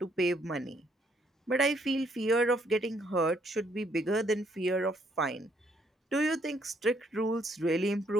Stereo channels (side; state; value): both; normal; correlation 0.70